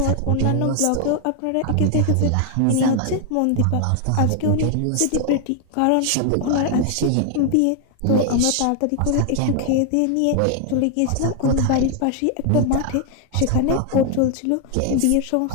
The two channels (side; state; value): both; different; correlation 0.00